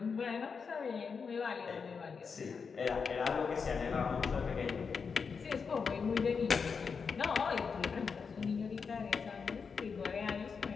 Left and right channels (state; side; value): quieter; right; 5.6 dB